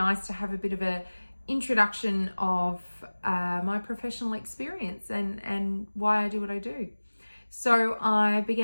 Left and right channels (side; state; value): both; inverted; correlation -1.00